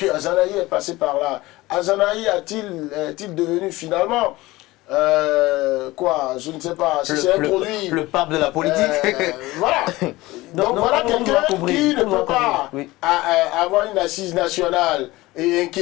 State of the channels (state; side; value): quieter; right; 19.4 dB